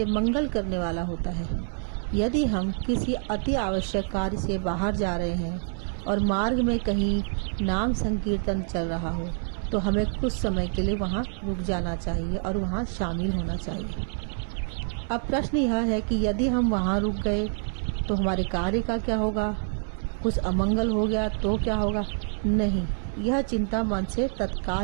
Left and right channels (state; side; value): silent; left; 60 dB below the other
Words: मंगल करने वाला होता है। यदि हम किसी अति आवश्यक कार्य से बाहर जा रहे हैं और मार्ग में कहीं नाम संकीर्तन चल रहा हो तो हमें कुछ समय के लिए वहाँ रुक जाना चाहिए और वहाँ शामिल होना चाहिए। अब प्रश्न यह है कि यदि हम वहाँ रुक गए तो हमारे कार्य का क्या होगा? कुछ अमंगल हो गया तो क्या होगा? नहीं, यह चिंता मन से